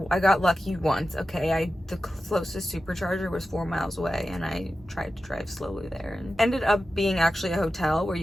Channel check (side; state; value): both; normal; correlation 0.93